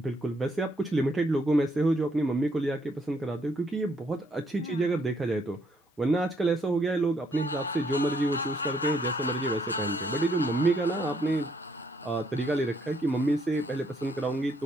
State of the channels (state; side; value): normal; both; correlation 0.71